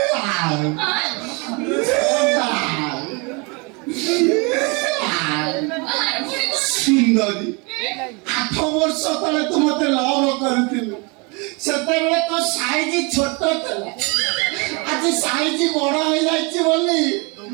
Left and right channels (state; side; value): quieter; left; 30.2 dB